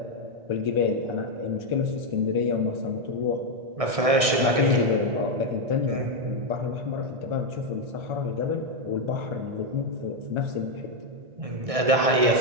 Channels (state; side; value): late; left; 1.6 ms